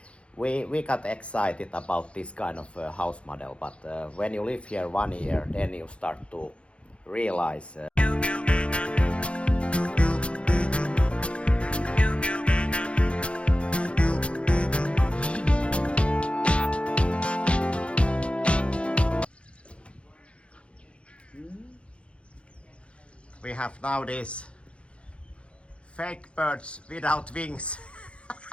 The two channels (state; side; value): late; right; 0.059 ms